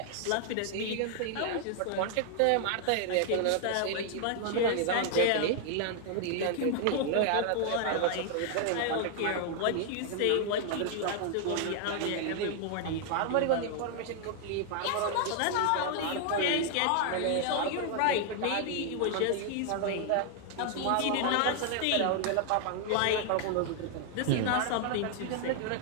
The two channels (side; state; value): both; different; correlation 0.00